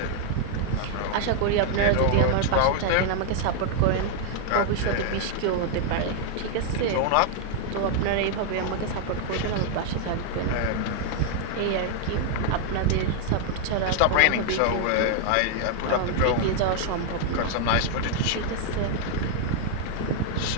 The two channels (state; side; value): different; both; correlation 0.00